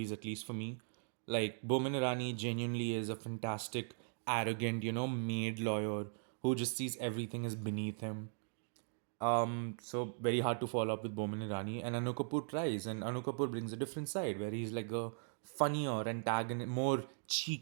at least for me. Like Bomin Irani genuinely is a fantastic, arrogant, maid lawyer who just sees everything as beneath him. So very hard to follow up with Boman Irani, and Anu Kapoor tries, and Anu Kapoor brings a different side where he's like a funnier, antagonist, more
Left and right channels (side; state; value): left; silent; digital silence